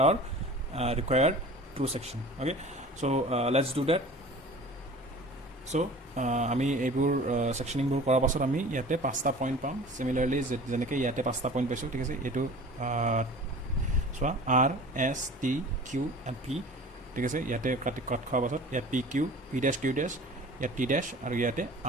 our required true section okay so let's do that so আমি এইবোৰ সেকশনিংবোৰ কৰাৰ পাছত আমি ইয়াতে 5টা point পাম সিমিলাৰলি যেনেকৈ ইয়াতে 5টা পইণ্ট পাইছোঁ ঠিক আছে এইটো চোৱা R S T Q and P ঠিক আছে ইয়াতে কাট খোৱাৰ পাছত ইয়াত P Q P dash Q dash ইয়াত T dash আৰু ইয়াতে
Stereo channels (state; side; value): normal; both; correlation 0.42